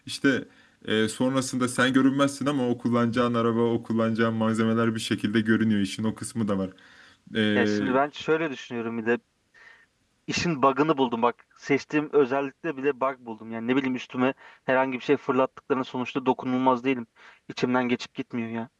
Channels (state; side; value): identical; both; correlation 1.00